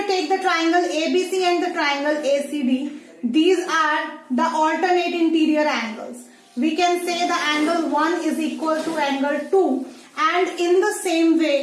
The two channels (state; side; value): identical; both; correlation 1.00